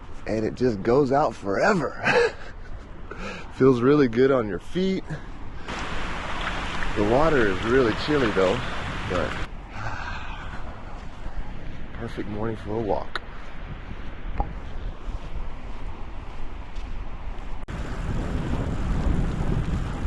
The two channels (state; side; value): identical; both; correlation 1.00